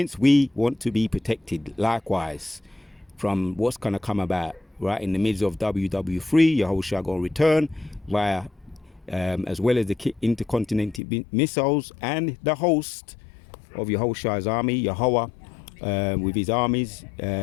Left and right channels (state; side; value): drops out; right; at 11.0 s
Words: we want to be protected likewise from what's going to come about. Right, in the midst of WW3, Yahushua going to return via, as well as the intercontinental missiles and the host of Yahushua's army, Yahweh, with his armies,